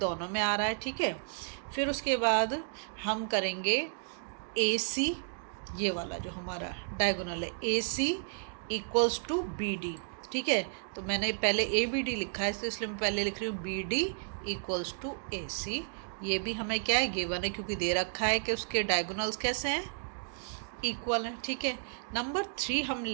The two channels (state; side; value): silent; left; digital silence